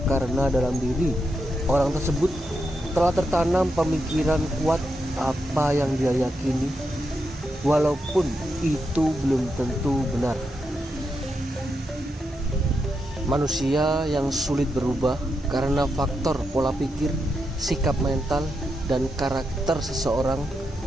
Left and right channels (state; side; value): normal; both; correlation 0.84